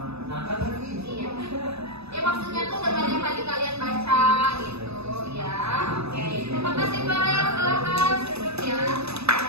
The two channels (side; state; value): left; late; 0.79 ms